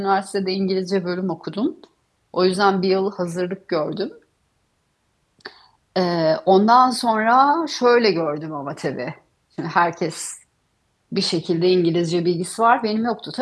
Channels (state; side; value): identical; both; correlation 1.00